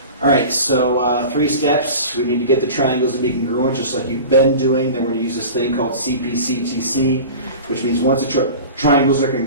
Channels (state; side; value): inverted; both; correlation -0.36